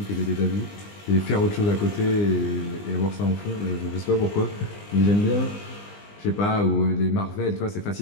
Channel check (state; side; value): late; right; 20 ms